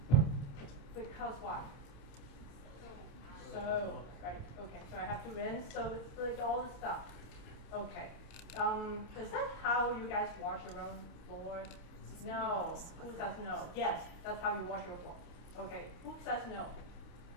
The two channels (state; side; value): late; right; 28 ms